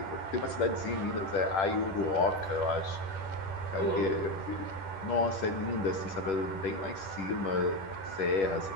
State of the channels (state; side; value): late; right; 10 ms